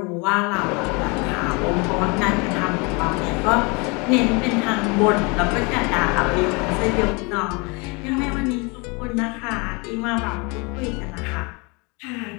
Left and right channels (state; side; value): quieter; right; 29.2 dB